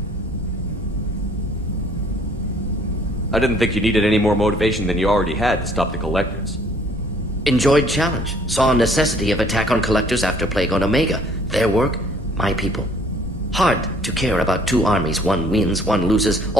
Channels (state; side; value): normal; both; correlation 0.58